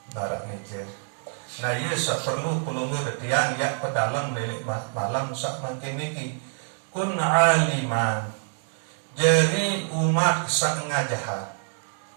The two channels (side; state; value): left; silent; 57 dB below the other